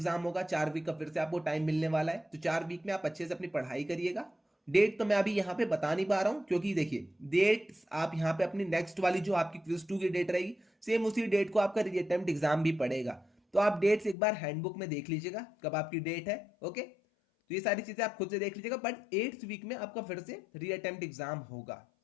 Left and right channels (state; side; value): drops out; right; at 14.2 s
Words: होगा, 4 वीक का फिर से आपको टाइम मिलने वाला है। तो 4 वीक में आप अच्छे से अपनी पढ़ाई करिएगा। डेट तो मैं अभी यहाँ पे बता नहीं पा रहा हूँ, क्योंकि देखिए डेट आप यहाँ पे अपनी नेक्स्ट वाली जो आपकी क्विज 2 की डेट रहेगी, सेम उसी डेट को आपका री अटेम्प्ट एग्जाम भी पड़ेगा। तो तो आप डेट्स एक बार हैंडबुक में देख लीजिएगा कब आपकी डेट है। ओके, तो ये सारी चीजें आप खुद से देख लीजिएगा, बट 8th वीक में आपका फिर से रीअटेम्प्ट एग्जाम होगा।